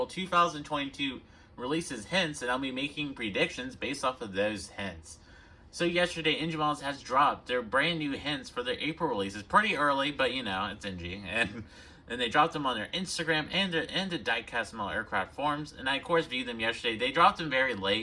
2022 releases hints, and I'll be making predictions based off of those hints. So yesterday, NG Models has dropped their brand new hints for their April releases. Pretty early, but you know, it's NG. And they dropped them on their Instagram and the diecast model aircraft forums, and I of course viewed them yesterday. They dropped them very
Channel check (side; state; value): both; identical; correlation 1.00